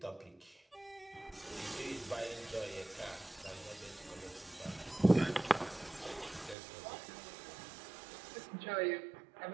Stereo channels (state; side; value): drops out; left; at 6.6 s